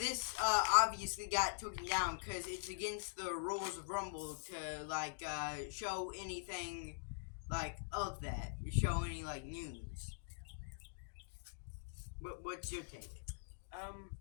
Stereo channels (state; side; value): silent; right; digital silence